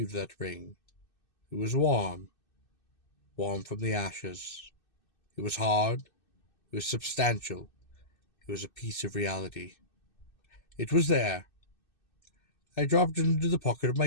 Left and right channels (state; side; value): late; right; 2.6 ms